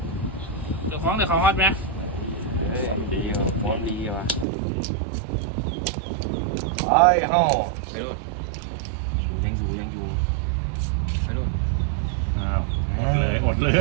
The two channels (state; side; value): drops out; left; at 4.5 s